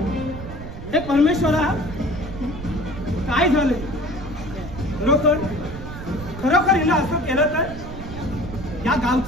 हे परमेश्वरा, काय झालं? खरोखर हिला असं केलं तर? या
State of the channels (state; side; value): noise; right; rumble, 11 dB below the sound